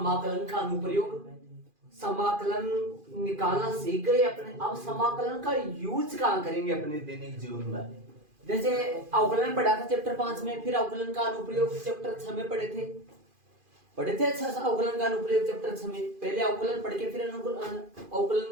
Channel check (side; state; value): left; late; 2.5 ms